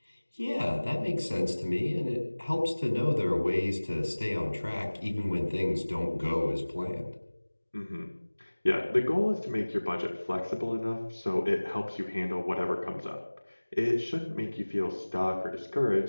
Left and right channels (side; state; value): both; inverted; correlation -1.00